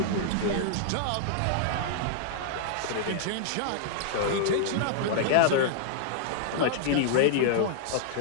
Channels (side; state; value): both; different; correlation -0.01